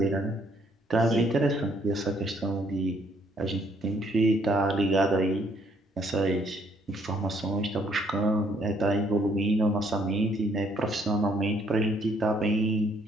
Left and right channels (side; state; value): both; normal; correlation 0.66